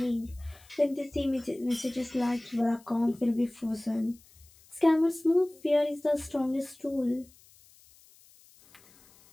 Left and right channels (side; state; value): left; noise; hiss, 27 dB below the sound